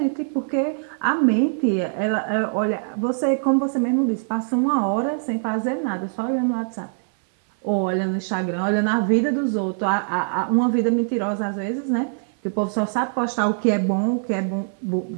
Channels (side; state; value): left; silent; 64 dB below the other